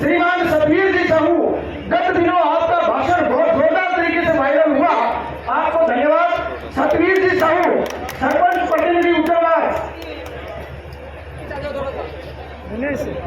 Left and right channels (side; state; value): both; identical; correlation 1.00